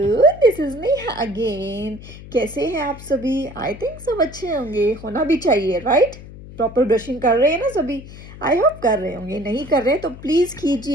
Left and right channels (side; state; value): left; noise; hum, 16 dB below the sound